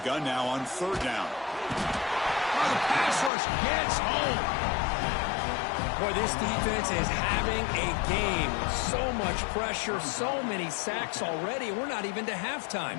now on third down. Oh, the pass rush gets home. Boy, this defense is having a game. So much pressure, so many sacks already. We're not even to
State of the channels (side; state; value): right; drops out; at 3.3 s